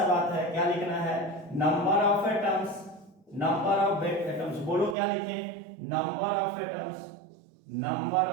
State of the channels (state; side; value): drops out; left; at 5.0 s